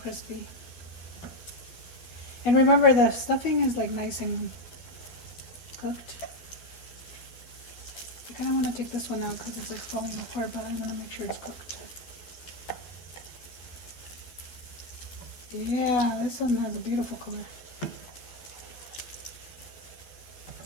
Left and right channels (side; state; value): right; late; 12 ms